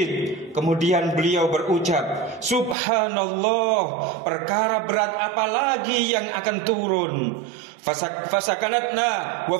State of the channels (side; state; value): left; drops out; at 2.8 s